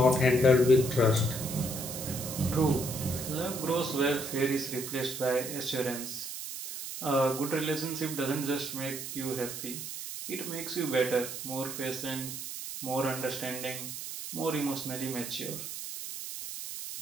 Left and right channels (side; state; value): right; noise; hiss, 7 dB below the sound